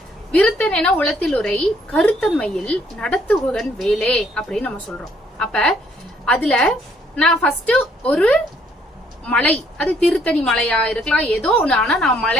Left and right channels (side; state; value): both; normal; correlation 0.66